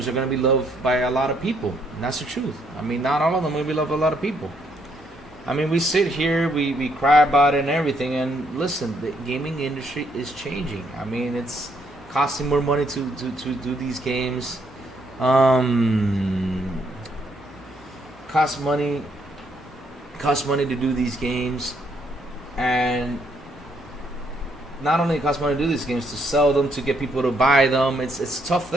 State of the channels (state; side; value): normal; both; correlation 0.72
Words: are gonna be loved by a lot of people. And that's the truth. I mean, not all of them will be loved by a lot of people. I mean, we sit here, we cry about it and everything, and listen, the gaming industry is changing. I mean, it's costing more money to do these games. Costs money to do these games, and not only it costs money to do these games, to sell them, to get people to buy them. It's a tough